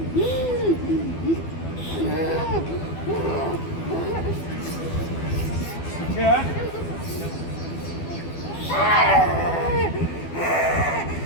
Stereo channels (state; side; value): late; right; 12 ms